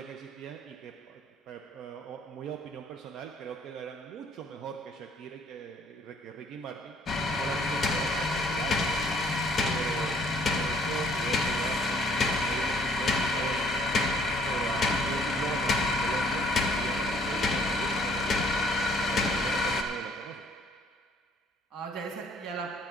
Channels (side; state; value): both; normal; correlation 0.61